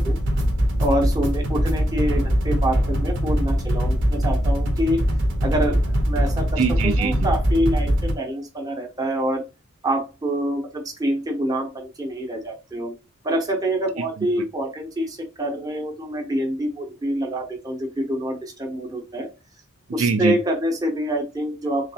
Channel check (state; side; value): normal; both; correlation 0.77